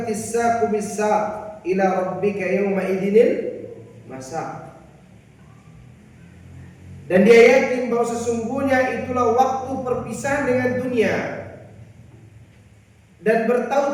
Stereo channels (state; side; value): identical; both; correlation 1.00